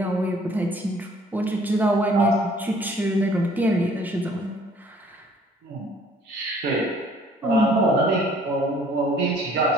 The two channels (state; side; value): normal; both; correlation 0.57